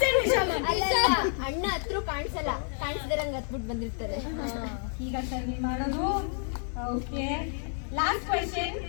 ಅಣ್ಣ ಹತ್ರ ಕಾಣಿಸ್ದಿರಂಗ್ ಹತ್ಬಿಟ್ಟು ಬಂದಿರ್ತಾರೆ. ಈಗ ಸರ್ ನೀವು ಮಾಡೋದು. Okay, last question.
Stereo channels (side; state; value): right; silent; 58 dB below the other